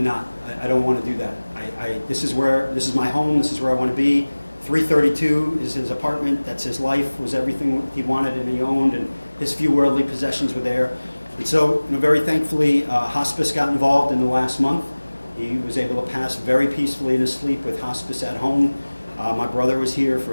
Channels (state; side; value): inverted; both; correlation -1.00